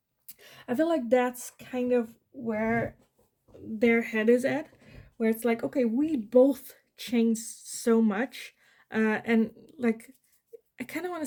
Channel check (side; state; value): both; identical; correlation 1.00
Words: I feel like that's kind of where their head is at, where it's like, okay, we both changed so much, and like, I kind of want to